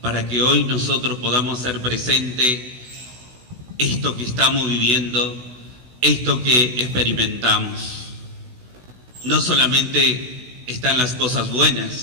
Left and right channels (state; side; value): late; left; 16 ms